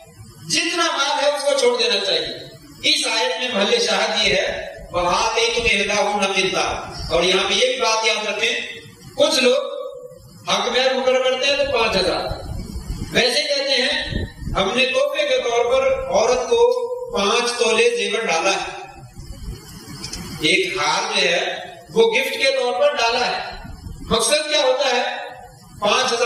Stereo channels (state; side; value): identical; both; correlation 1.00